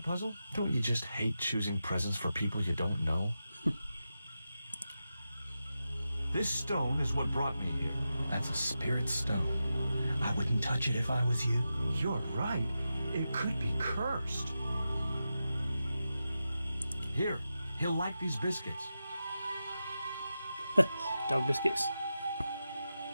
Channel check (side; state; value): both; inverted; correlation -0.91